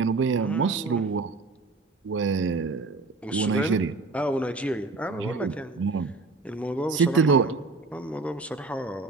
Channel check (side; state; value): left; quieter; 3.7 dB